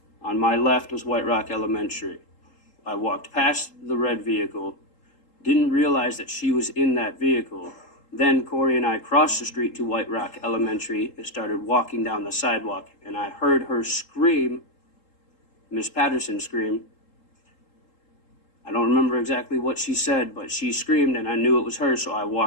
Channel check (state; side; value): late; right; 3.7 ms